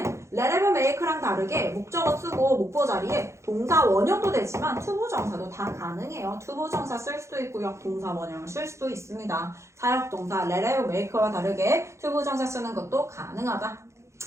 let have make랑 다르게 목적어 쓰고 목보 자리에 동사 원형도 되지만 투부정사도 다 가능해요. 투부정사 쓸 수도 있고요. 동사 원형을 쓸 수도 있습니다. 사역동사 let have make와 다르게 투부정사 쓰는 것도 가능하다.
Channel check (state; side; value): late; left; 0.14 ms